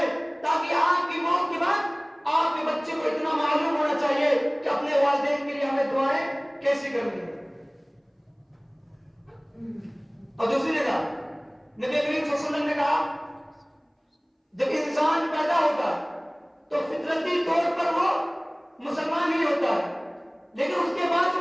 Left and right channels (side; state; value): both; identical; correlation 1.00